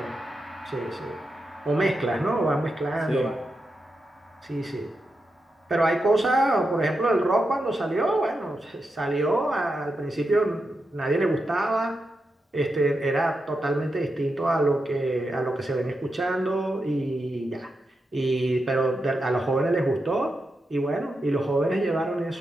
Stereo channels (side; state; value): both; normal; correlation 0.87